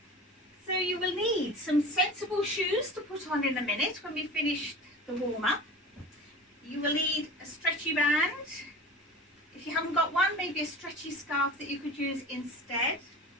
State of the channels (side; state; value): both; normal; correlation 0.37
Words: So you will need some sensible shoes to put on in a minute when we finish the warm-up. You will need a stretchy band. If you haven't got one, maybe a stretchy scarf that you could use instead.